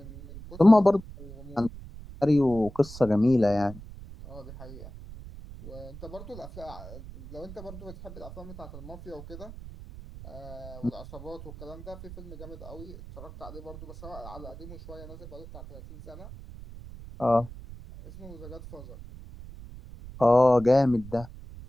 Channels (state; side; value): noise; right; rumble, 14 dB below the sound